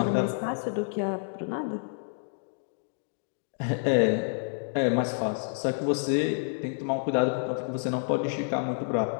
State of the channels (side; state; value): right; silent; digital silence